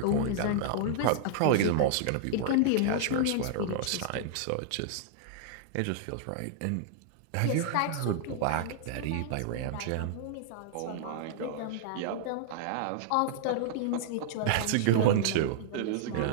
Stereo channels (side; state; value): both; different; correlation -0.01